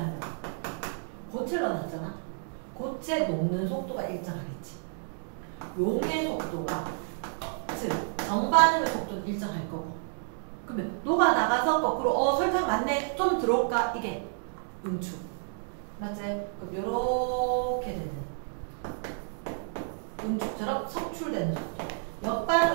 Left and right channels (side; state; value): left; silent; digital silence